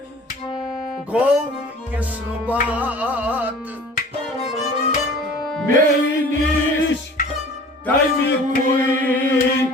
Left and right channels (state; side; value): normal; both; correlation 0.45